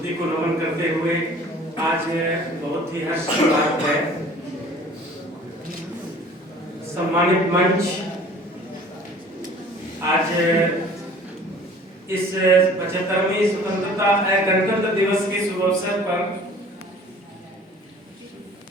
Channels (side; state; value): both; normal; correlation 0.49